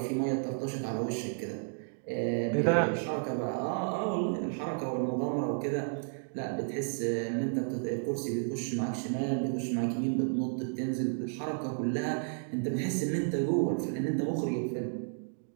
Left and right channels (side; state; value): left; silent; digital silence